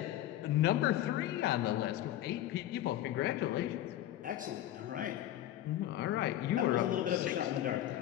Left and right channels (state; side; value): quieter; right; 13.0 dB